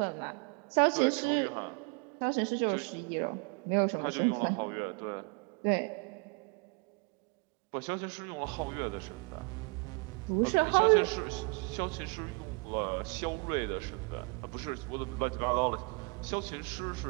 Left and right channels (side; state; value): left; quieter; 33.7 dB